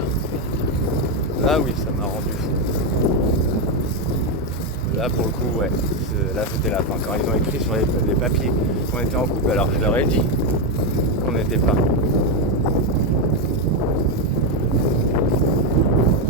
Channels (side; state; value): both; normal; correlation 0.06